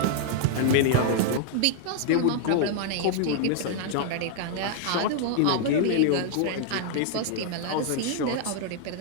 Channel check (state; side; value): different; both; correlation -0.01